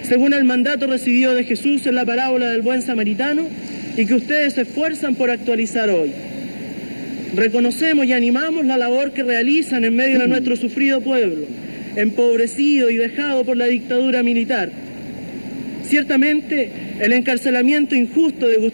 según el mandato recibido de Jesús en la parábola del buen samaritano, y que ustedes se esfuerzan por actualizar hoy. Reconocemos y animamos la labor que realizan en medio de nuestro sufrido pueblo, empobrecido y vejado por la dictadura militar. Ciertamente, el encarcelamiento injusto de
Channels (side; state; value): both; inverted; correlation -1.00